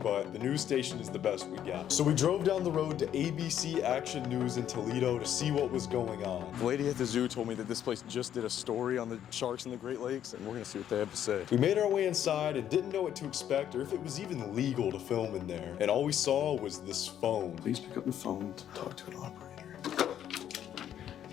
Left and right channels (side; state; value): right; quieter; 10.3 dB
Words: the news station is the best we got. So we drove down the road to ABC Action News in Toledo to see what was going on. The lady at the zoo told me that this place just did a story on the sharks in the Great Lakes, and we're gonna see what they have to say. We made our way inside and didn't know what to expect or if it was even legal to film in there. And all we saw was this phone. Please pick up the phone to talk to an operator.